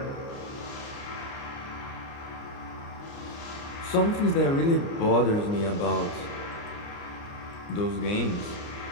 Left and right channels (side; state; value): right; late; 29 ms